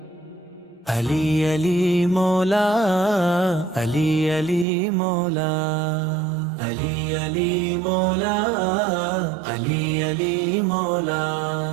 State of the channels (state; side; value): drops out; left; at 4.7 s